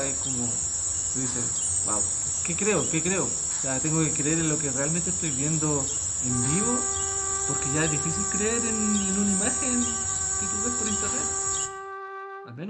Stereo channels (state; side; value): identical; both; correlation 1.00